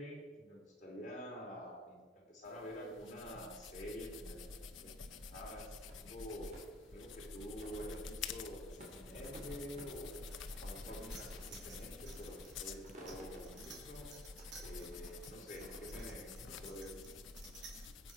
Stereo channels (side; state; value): both; normal; correlation 0.52